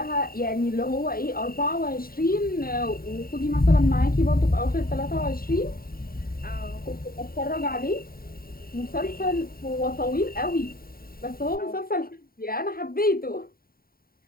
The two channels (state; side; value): late; right; 0.43 ms